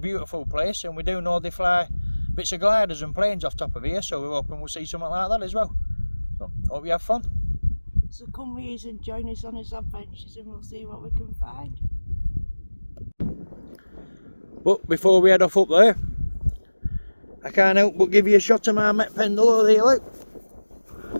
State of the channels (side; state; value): both; inverted; correlation -1.00